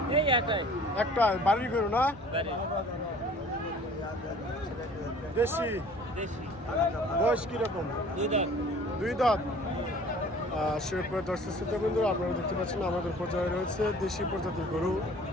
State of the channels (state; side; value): normal; both; correlation 0.49